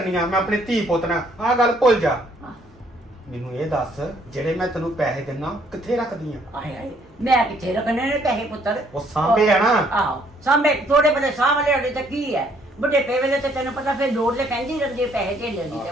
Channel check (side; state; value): both; normal; correlation 0.65